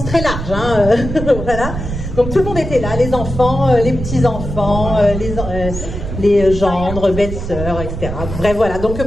très large, hein, voilà. Donc tout le monde était là, les enfants, les petits-enfants, les gendres, belles-sœurs, etc. Bref, voilà. Donc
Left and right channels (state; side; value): noise; right; rumble, 6 dB below the sound